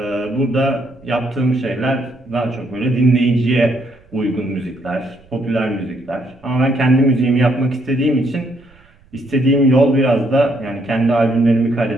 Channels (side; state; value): right; noise; rumble, 29 dB below the sound